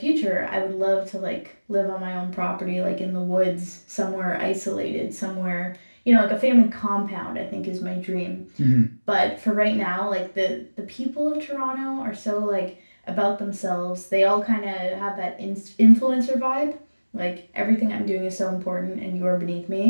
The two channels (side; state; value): both; inverted; correlation -1.00